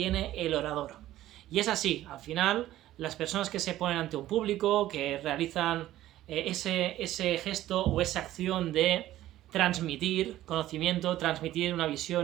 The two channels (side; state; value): left; quieter; 14.2 dB